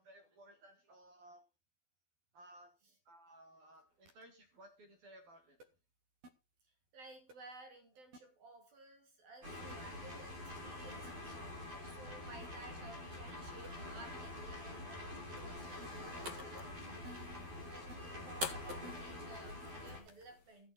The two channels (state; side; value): late; left; 12 ms